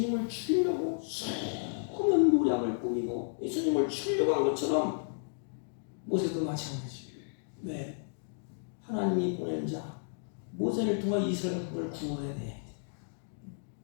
죽이려고 수많은 모략을 꾸미고 예수님을 죽이려고 한 것처럼 모세도 마찬가지예요. 왜? 하나님이 보낸 자 모세를 통해 이스라엘을 구원해내야 돼.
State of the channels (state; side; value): silent; right; digital silence